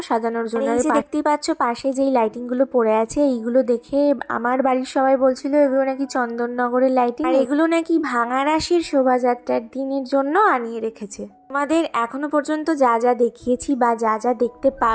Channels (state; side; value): identical; both; correlation 1.00